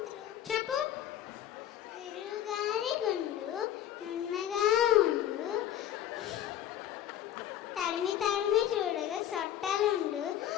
చెప్పు. గురువుగారి గుండు నున్నగా ఉండు, తడిమి తడిమి చూడగా సొట్టలుండు,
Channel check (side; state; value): right; quieter; 11.2 dB